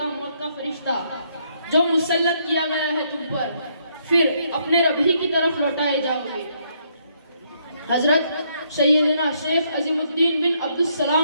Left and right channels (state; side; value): inverted; both; correlation -0.72